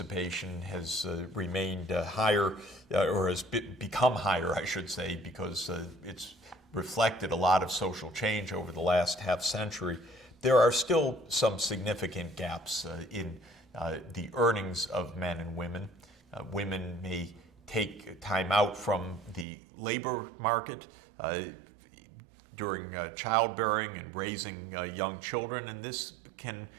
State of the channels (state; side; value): drops out; left; at 19.5 s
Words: has remained higher, or has become higher, I should say, because it's reflected a lot of social change over the last half century, there are still some significant gaps in the earnings of men and women. Women may take time out from the labor market during childbearing and raising young children, and this can